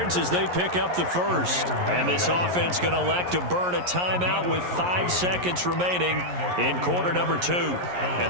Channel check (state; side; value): late; left; 11 ms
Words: as they pick up the first. And this offense going to elect to burn a timeout with 5 seconds remaining in quarter number 2.